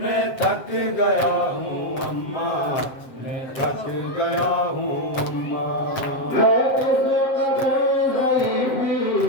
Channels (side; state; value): right; late; 7.6 ms